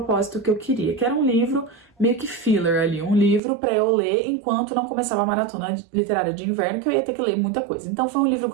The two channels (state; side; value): drops out; left; at 3.4 s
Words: que eu queria, que era um livro meio que filler ali, um livro pra eu ler enquanto não começava a maratona literária de inverno, que eu ia ter que ler muita coisa. Então foi um livro